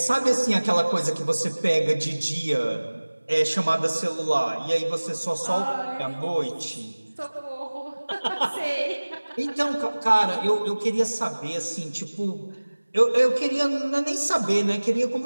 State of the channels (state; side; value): inverted; both; correlation -1.00